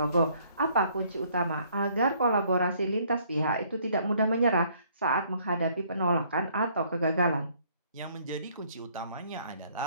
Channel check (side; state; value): both; inverted; correlation -0.63